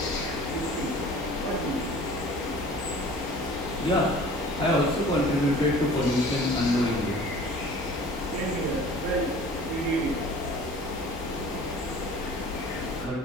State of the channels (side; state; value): both; normal; correlation 0.46